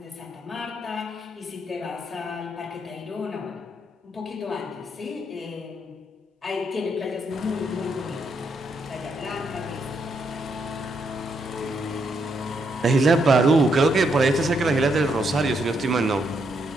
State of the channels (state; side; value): normal; both; correlation 0.77